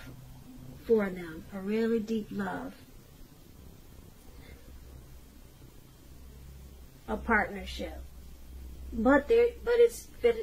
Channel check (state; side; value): identical; both; correlation 1.00